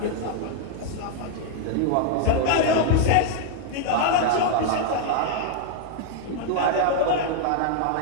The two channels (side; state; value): both; different; correlation 0.00